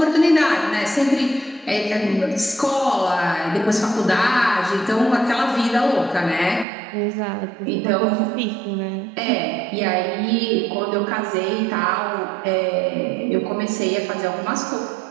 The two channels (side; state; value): left; drops out; at 6.7 s